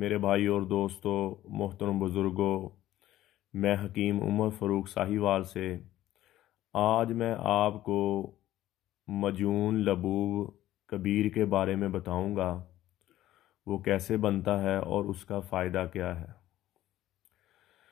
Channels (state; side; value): quieter; right; 14.1 dB